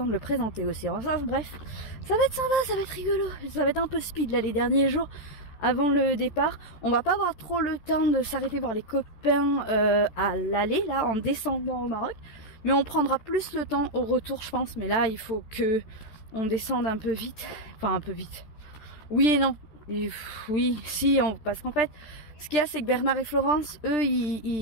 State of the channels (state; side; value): late; right; 13 ms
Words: de le présenter aussi. Enfin bref, ça va être sympa, ça va être rigolo, ça va être un peu speed là les derniers jours avant le départ. On va pas avoir trop le temps de s'arrêter voir les copains à l'aller là en descendant au Maroc, mais on prendra plus le temps au retour je pense. Mais là il faut que on descende un peu vite, enfin un peu vite. Oui et non. Et, oui, si, parce qu'en fait, ce qu'il y a, c'est que Bernard et Florence, eux,